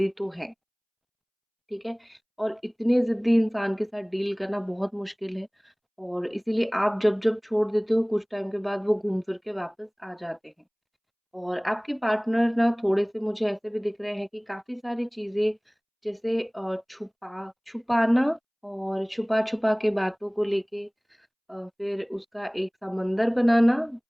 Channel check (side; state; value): both; identical; correlation 1.00